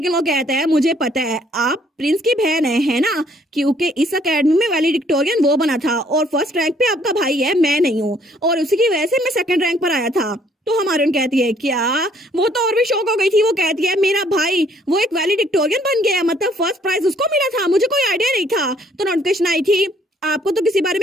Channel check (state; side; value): normal; both; correlation 0.63